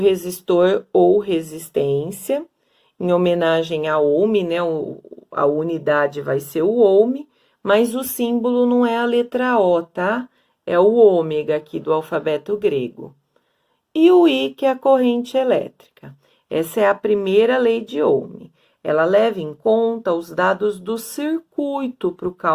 ou resistência, em homenagem a ohm, né? A unidade vai ser o ohm, mas o símbolo não é a letra O, tá? É o ômega aqui do alfabeto grego. E o I, que é a corrente elétrica. Essa é a primeira lei de Ohm. Ela leva em conta os dados do circuito para o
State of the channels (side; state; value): both; identical; correlation 1.00